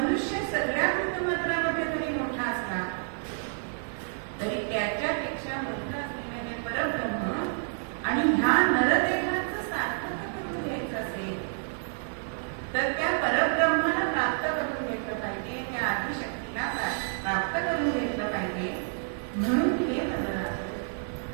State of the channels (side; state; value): left; silent; digital silence